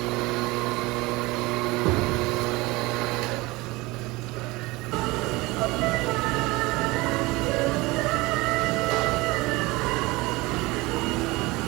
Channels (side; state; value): left; quieter; 22.1 dB